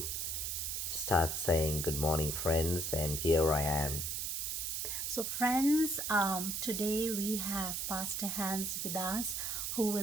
starts saying, Good morning, friends, and here I am. So, friends, today we have Pastor Hans with us who will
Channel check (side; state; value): right; noise; hiss, 1 dB below the sound